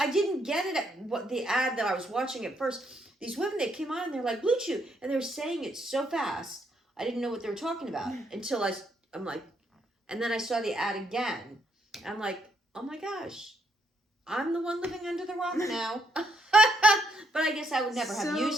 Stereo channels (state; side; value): normal; both; correlation 0.74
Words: didn't get it at what the ad that I was watching at first. These women, they came on and they're like, Blue Chew. And they were saying it so fast. I didn't know what they were talking about until I'm like, and then I saw the ad again. I'm like, oh my gosh, I'm the one living under the rock now. But I guess I would never have